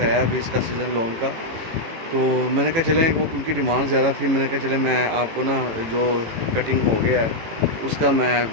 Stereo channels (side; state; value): left; late; 18 ms